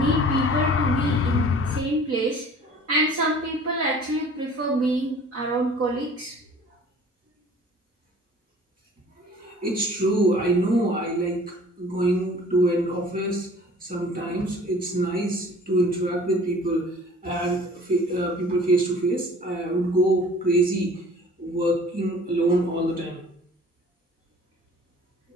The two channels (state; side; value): normal; both; correlation 0.49